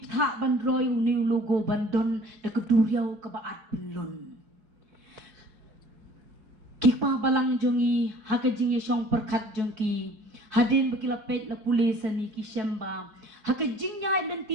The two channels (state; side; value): late; left; 4.6 ms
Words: bandroy uni logo bandon da keduriau ke baat pelun kikpa balang jongi hakajing yesong perkat jongki hadin bakila pet la pulis ani ki shemba hakajing nya